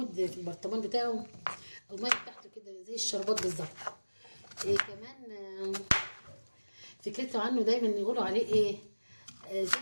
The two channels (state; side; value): inverted; both; correlation -1.00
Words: في البرطمان بتاعه، الميه بتاعته كده زي الشربات بالظبط. كمان فكرته عنه دايما يقولوا عليه ايه،